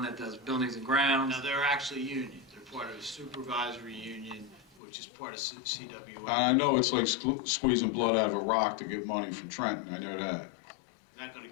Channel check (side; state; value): right; drops out; at 4.8 s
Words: that does buildings and grounds. now they're actually union. They're part of a supervisory union, which is part of CWA. I know it's like squeezing blood out of a rock to get money from Trenton, I know that. Not gonna